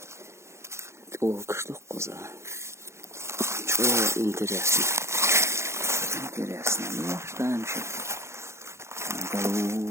О, что коза. Что интересно. Интересно. Ну, что там еще?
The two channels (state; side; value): late; left; 0.13 ms